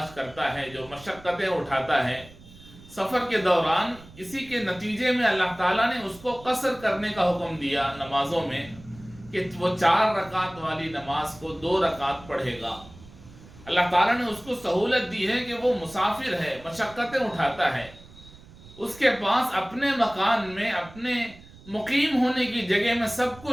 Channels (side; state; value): right; noise; rumble, 21 dB below the sound